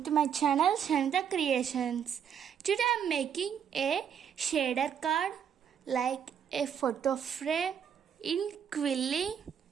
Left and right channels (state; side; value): quieter; left; 8.2 dB